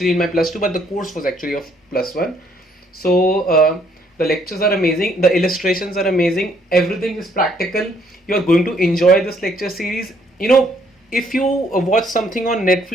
in my plus two, but the course was actually of plus one. So the lectures are amazing, the illustrations are amazing, everything is practical. You are going to enjoy this lecture series. If you watch something on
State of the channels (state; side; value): normal; both; correlation 0.67